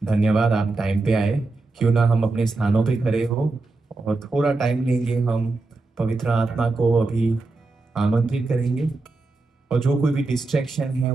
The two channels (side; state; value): left; quieter; 3.5 dB